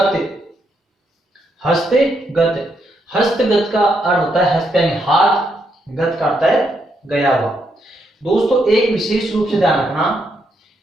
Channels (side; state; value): both; normal; correlation 0.78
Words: हस्तगत, हस्तगत का अर्थ होता है हस्त यानी हाथ, गत का अर्थ है गया हुआ। दोस्तों एक विशेष रूप से ध्यान रखना